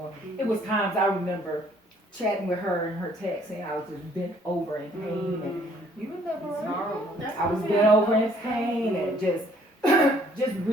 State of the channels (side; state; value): both; normal; correlation 0.61